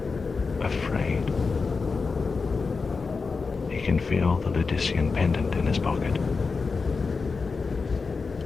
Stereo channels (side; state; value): right; quieter; 4.6 dB